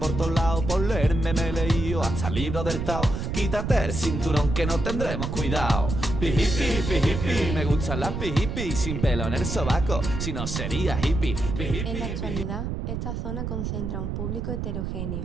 todos lados. Por leerme me he leído hasta el libro del Tao. Quítate el cinturón que no tendremos cuidado. Pijipi, pijipi, me gustan las pijipi, sin pelo en el sobaco, si no sería hippie. Pijipi. En la actualidad, esta zona concentra un público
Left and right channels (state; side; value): noise; right; rumble, 3 dB below the sound